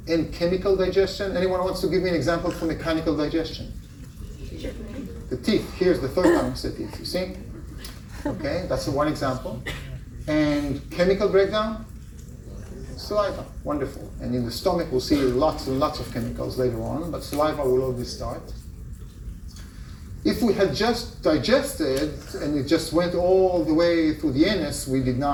and chemical digestion. Anyone wants to give me an example for mechanical digestion? The teeth. Here's the third time I said teeth, you see? Okay, that's one example. And chemical breakdown? Saliva. Wonderful. And in the stomach, we'll see lots and lots of chemicals later on, but saliva will always start. If we had just digested and it just went all the way through the anus, we did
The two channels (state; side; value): identical; both; correlation 1.00